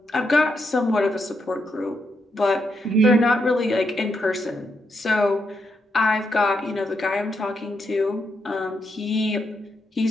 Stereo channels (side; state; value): both; normal; correlation 0.81